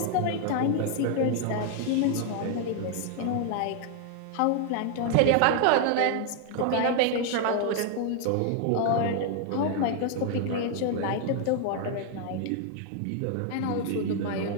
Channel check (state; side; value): different; both; correlation 0.00